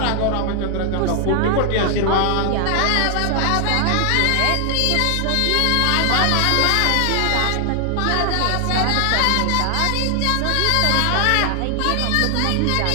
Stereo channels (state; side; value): different; both; correlation 0.00